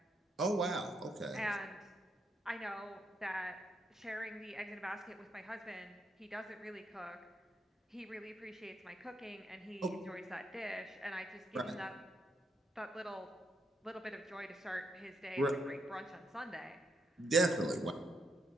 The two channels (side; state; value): both; normal; correlation 0.78